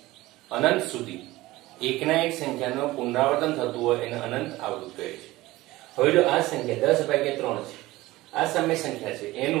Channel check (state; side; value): quieter; left; 18.4 dB